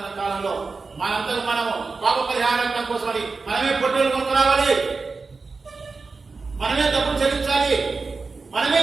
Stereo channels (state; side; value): quieter; left; 4.2 dB